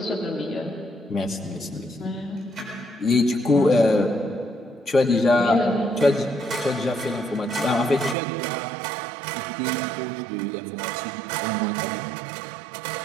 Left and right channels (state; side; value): drops out; left; at 8.2 s